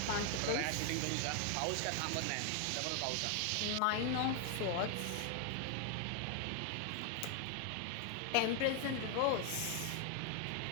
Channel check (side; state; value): both; different; correlation 0.00